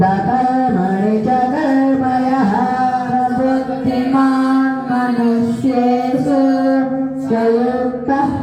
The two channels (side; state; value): both; identical; correlation 1.00